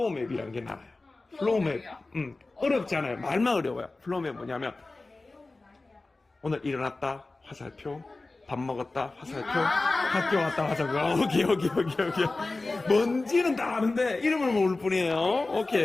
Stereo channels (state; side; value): quieter; right; 3.3 dB